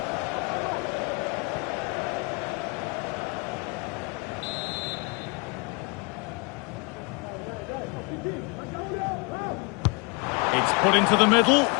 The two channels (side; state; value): right; quieter; 30.5 dB